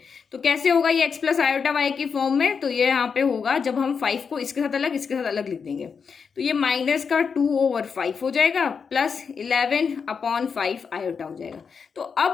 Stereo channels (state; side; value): quieter; right; 6.0 dB